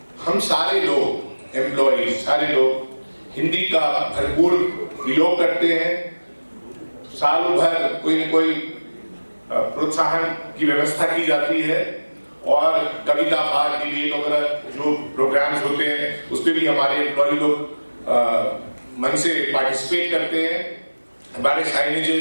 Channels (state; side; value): inverted; both; correlation -1.00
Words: हम सारे लोग एम्प्लॉय, सारे लोग हिंदी का भरपूर प्रयोग करते हैं। सालों भर कोई न कोई प्रोत्साहन की व्यवस्था की जाती है, और कविता पाठ, डिबेट वगैरह जो प्रोग्राम्स होते हैं उस पर भी हमारे एम्प्लॉय लोग मन से पार्टिसिपेट करते हैं। हमारे